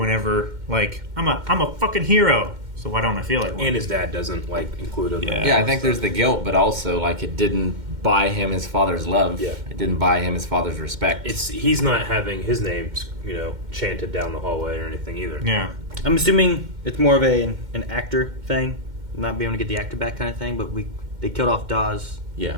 I'm a fucking hero. So why don't I feel like one? And his dad doesn't include him. Yeah, I think there's the guilt, but also it didn't buy him his father's love. Yeah. It didn't buy him his father's respect. He's not having his name, chanted down the hallway or anything either. Yeah. I'm assuming it's more of an actor thing, not being able to get the actor back kind of thing. But they killed off Dawes. Yeah.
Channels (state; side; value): late; left; 2.1 ms